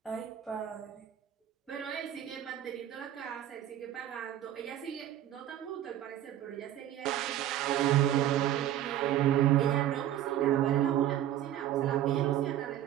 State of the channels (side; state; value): left; quieter; 12.0 dB